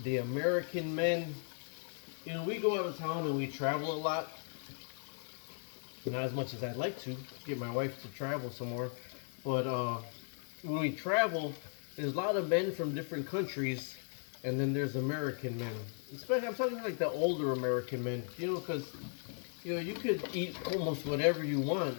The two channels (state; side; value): silent; right; 53 dB below the other